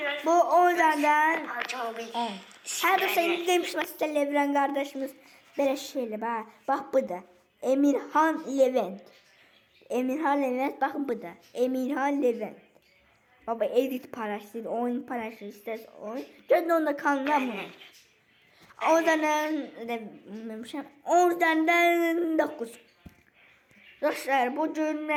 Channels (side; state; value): both; identical; correlation 1.00